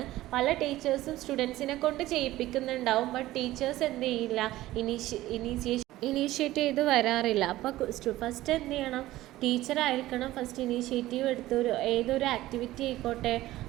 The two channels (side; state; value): left; quieter; 16.1 dB